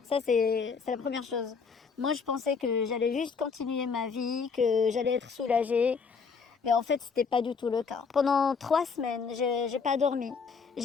Ça, c'est la première chose. Moi, je pensais que j'allais juste continuer ma vie, que j'allais être soulagée. Mais en fait, c'était pas du tout le cas. Pendant 3 semaines, j'ai pas dormi.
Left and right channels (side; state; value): right; quieter; 5.4 dB